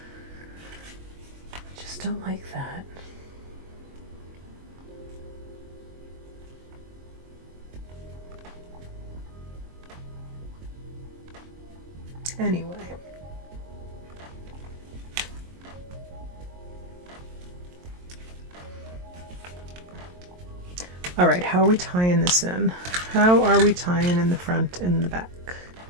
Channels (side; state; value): left; late; 22 ms